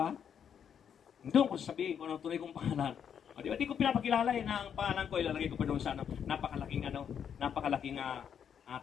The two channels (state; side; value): quieter; right; 8.1 dB